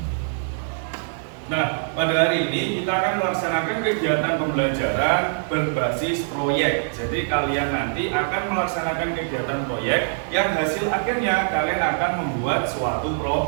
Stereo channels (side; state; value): left; silent; 60 dB below the other